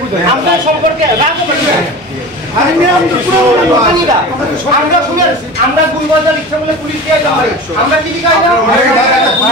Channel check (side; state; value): both; normal; correlation 0.33